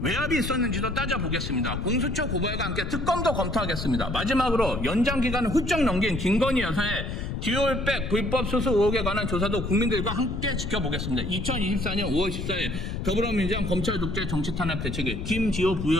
외압이 있었는지도 따져보겠습니다. 공수처 고발과 함께 특검도 검토하겠습니다. 마지막으로 연장 기간을 훌쩍 넘긴 김건희 여사의 듀얼백 불법 수수 의혹에 관한 조사도 국민들과 함께 지켜보겠습니다. 2024년 5월 14일 더불어민주당 검찰 독재 정치 탄압 대책위 김지호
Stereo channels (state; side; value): noise; left; rumble, 5 dB below the sound